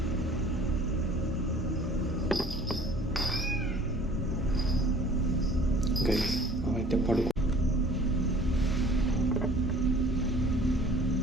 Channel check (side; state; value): both; normal; correlation 0.50